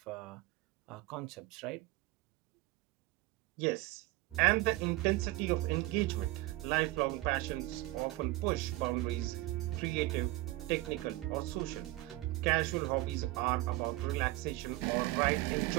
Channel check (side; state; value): left; quieter; 19.0 dB